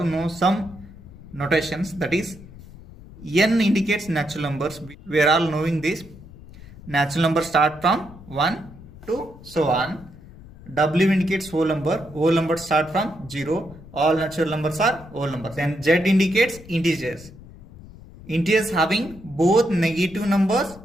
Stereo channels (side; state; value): left; noise; rumble, 19 dB below the sound